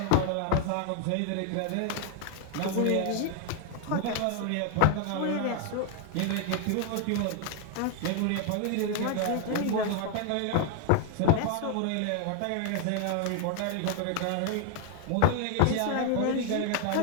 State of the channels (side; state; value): both; different; correlation 0.00